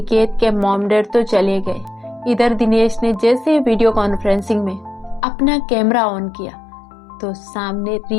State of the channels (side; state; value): right; drops out; at 5.2 s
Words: के मॉम डैड तो चले गए। इधर दिनेश ने जैसे वीडियो कॉन्फ्रेंसिंग में अपना कैमरा ऑन किया तो सामने